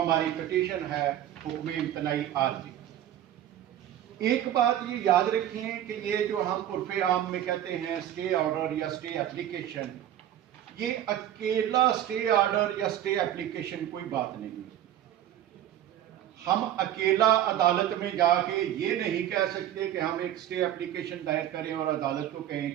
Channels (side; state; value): left; quieter; 11.6 dB